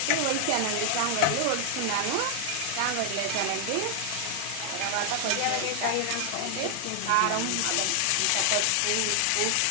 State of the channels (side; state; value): both; different; correlation 0.00